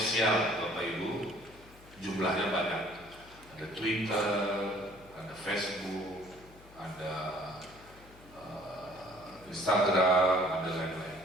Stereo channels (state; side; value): noise; left; hum, 22 dB below the sound